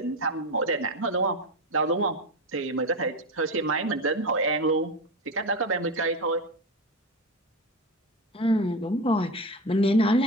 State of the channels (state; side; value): normal; both; correlation 0.20